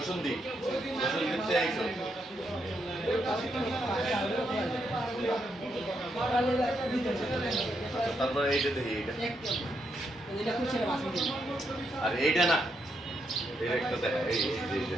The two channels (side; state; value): both; normal; correlation 0.79